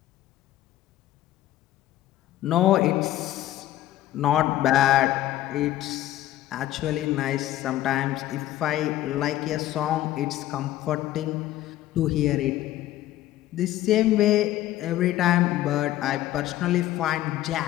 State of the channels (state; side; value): quieter; right; 14.1 dB